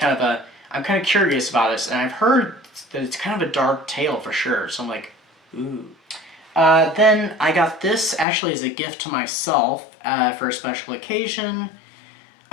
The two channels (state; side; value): drops out; right; at 8.2 s